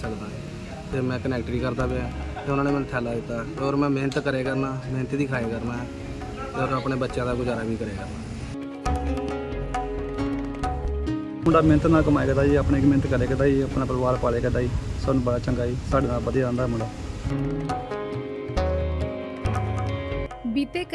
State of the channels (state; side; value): identical; both; correlation 1.00